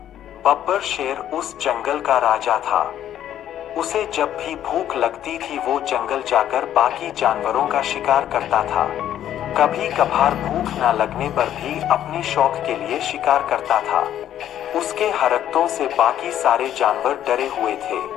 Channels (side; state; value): right; quieter; 11.1 dB